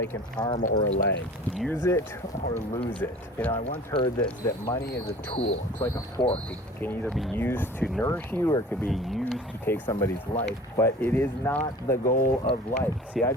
an arm or a leg. Use it or lose it. You know, I once heard that money is a tool. It's like a fork. It can either be used to nourish you or it could be used to take somebody's life, but it is not the goal of life. See, I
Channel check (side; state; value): both; normal; correlation 0.43